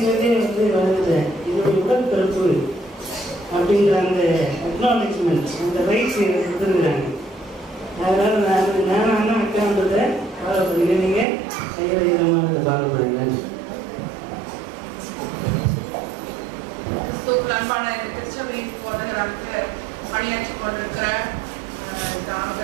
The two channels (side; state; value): left; drops out; at 11.2 s